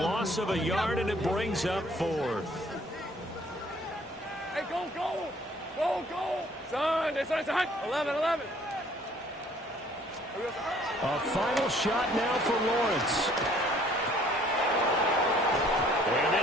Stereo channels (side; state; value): both; normal; correlation 0.58